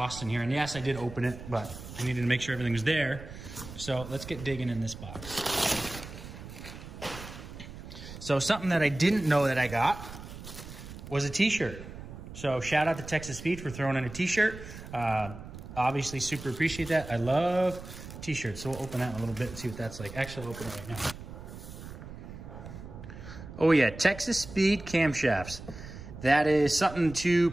in here. And yes, I did open it, but I needed to make sure everything was there. So let's get digging in this box. So something that I didn't know that I got was a t-shirt. So shout out to Texas Speed for throwing in a t-shirt. Obviously super appreciate that. I love t-shirts. So we'll open that in a little bit and see what that's like. Actually, I'll open it right now. Oh yeah, Texas Speed camshafts. That is something to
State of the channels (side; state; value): right; noise; rumble, 13 dB below the sound